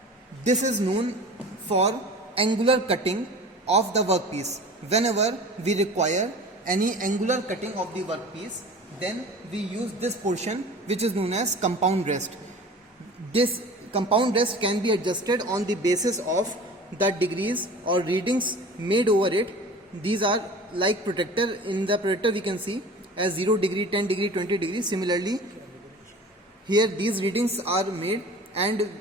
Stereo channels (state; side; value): normal; both; correlation 0.40